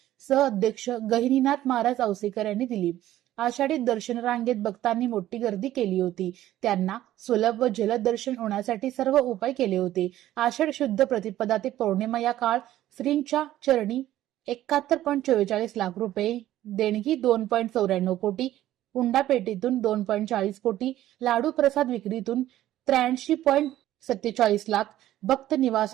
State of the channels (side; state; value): left; quieter; 13.7 dB